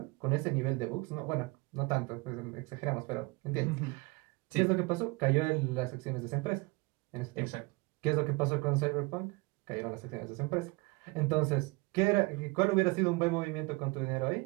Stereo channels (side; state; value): left; quieter; 25.0 dB